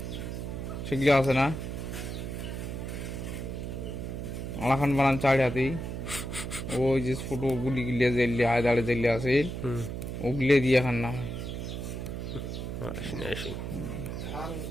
সেগুলো আছে না, আর এখন বানান 4 হাতি। ওই যে ছোট গুলি গিলে জেলে হাজারে জেলে আছে হুম ওগুলো দিয়ে এখন না আসেন আসেন।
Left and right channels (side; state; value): right; noise; hum, 5 dB below the sound